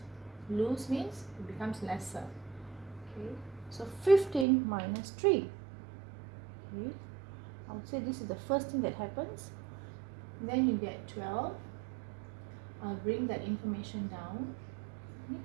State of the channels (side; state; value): left; drops out; at 4.5 s